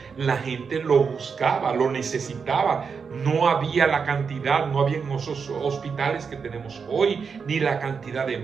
La gente lo buscaba, lo necesitaba. No había la cantidad, no había esos hospitales que tenemos hoy, ni la cantidad de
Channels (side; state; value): left; quieter; 5.8 dB